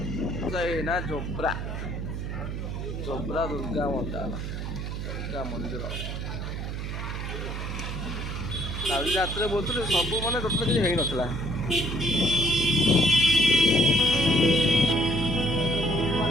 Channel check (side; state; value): right; noise; hum, 5 dB below the sound